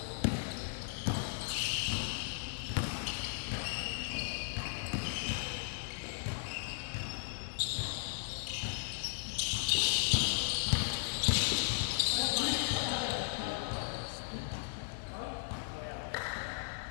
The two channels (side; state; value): right; silent; digital silence